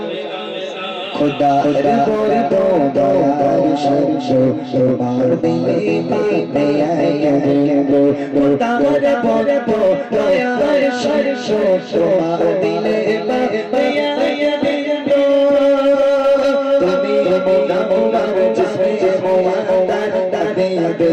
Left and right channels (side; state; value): both; identical; correlation 1.00